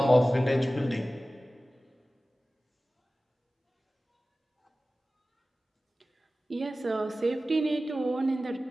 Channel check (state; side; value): normal; both; correlation 0.96